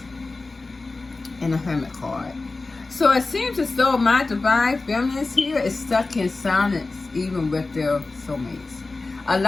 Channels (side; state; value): right; quieter; 3.5 dB